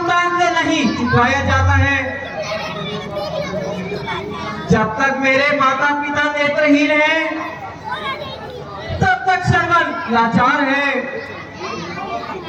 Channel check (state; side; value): identical; both; correlation 1.00